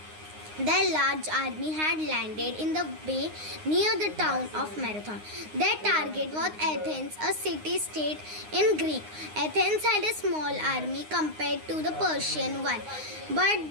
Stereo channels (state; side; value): late; left; 9.6 ms